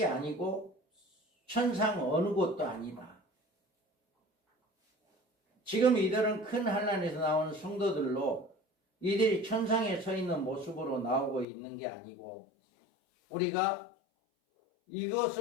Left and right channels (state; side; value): drops out; right; at 11.5 s